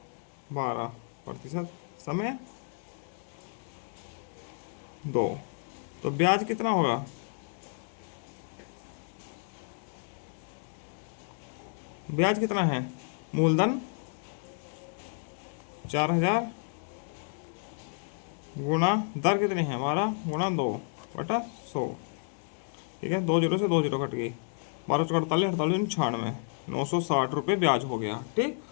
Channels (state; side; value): silent; right; 57 dB below the other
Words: 12%, समय 2, तो ब्याज कितना होगा, ब्याज कितना है, मूलधन 4,000 गुणा दर कितनी है 12 गुणा 2/100। ठीक है, 2 जीरो से 2 जीरो कट गई, 12 चौक 48, 48 96, 960 रुपये ब्याज हो गया। ठीक,